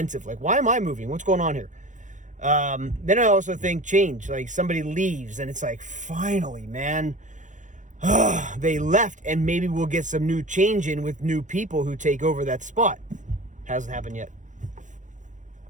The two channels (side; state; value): left; late; 0.36 ms